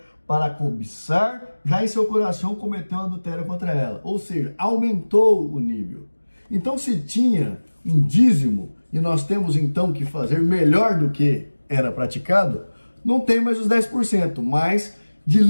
para cobiçar, já em seu coração cometeu adultério contra ela. Ou seja, aumentou o nível. Então, se tinha um dízimo e nós temos então que fazer melhor do que era praticado, não tem mais os 10%, mas de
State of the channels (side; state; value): both; inverted; correlation -1.00